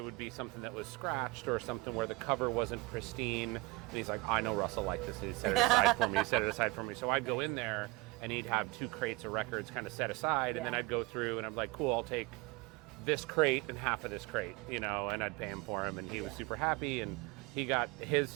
be something that was scratched or something where the cover wasn't pristine. And he's like, I know Russell liked this. He set it aside for me. He set it aside for me. So I'd go in there and he'd have 2 crates of records kind of set aside. And then I'd go through and I'm like, cool, I'll take this crate and half of this crate, and I'd pay him for him. And he was super happy. And he got his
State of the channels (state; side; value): quieter; left; 22.3 dB